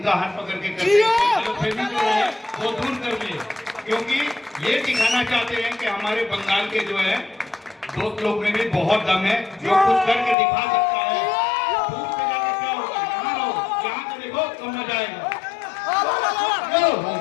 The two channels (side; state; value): right; drops out; at 10.4 s